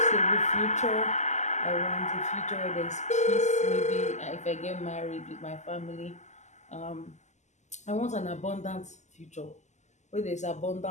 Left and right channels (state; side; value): late; right; 0.34 ms